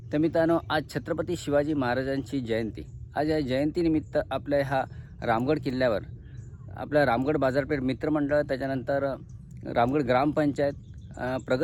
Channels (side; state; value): both; identical; correlation 1.00